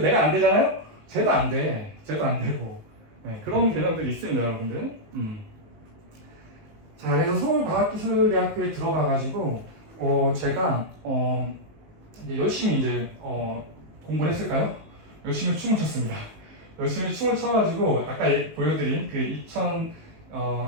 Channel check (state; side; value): late; left; 19 ms